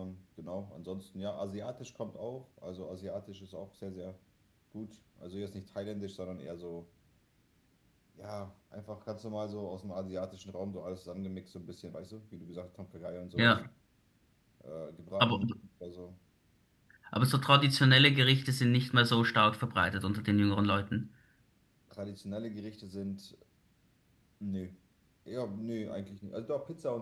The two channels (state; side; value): identical; both; correlation 1.00